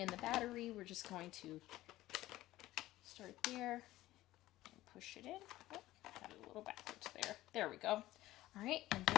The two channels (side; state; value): right; quieter; 16.2 dB